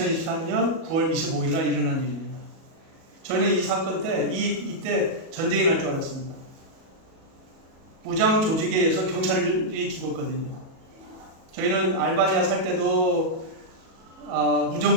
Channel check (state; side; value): late; left; 37 ms